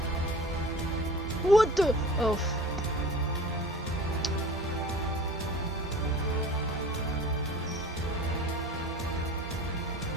What the? Oh.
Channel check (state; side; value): normal; both; correlation 0.40